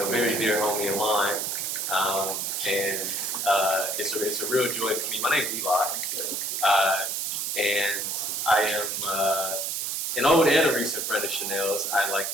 very dear homie of mine, and it's a real joy for me. My name is Eli, and I am an old and a recent friend of Chanel's, I like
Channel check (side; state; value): right; noise; hiss, 1 dB below the sound